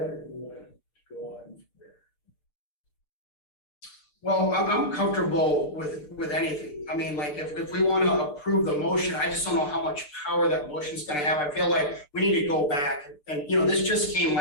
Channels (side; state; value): right; late; 6.8 ms